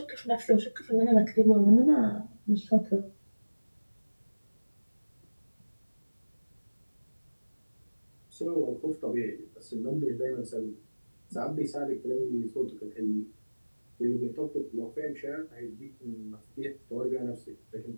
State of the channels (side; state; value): both; inverted; correlation -1.00